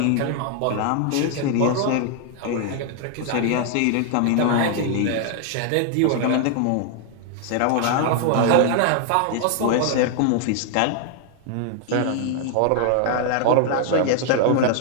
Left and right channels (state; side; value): different; both; correlation 0.00